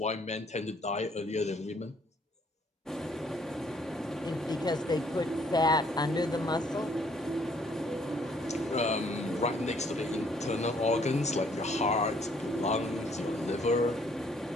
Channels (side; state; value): both; normal; correlation 0.64